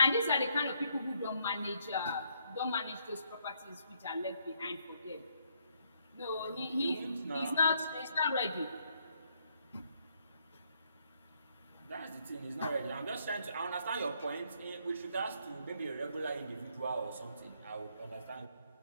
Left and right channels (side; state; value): both; inverted; correlation -0.72